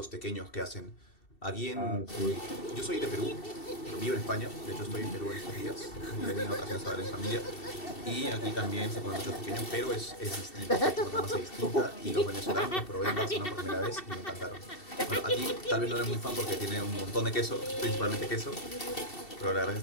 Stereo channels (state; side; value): late; right; 2.7 ms